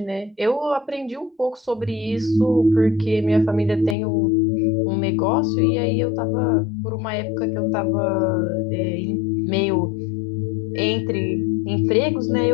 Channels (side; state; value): right; drops out; at 4.0 s